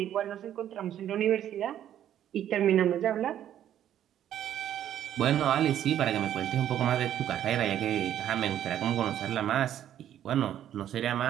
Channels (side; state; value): left; quieter; 11.0 dB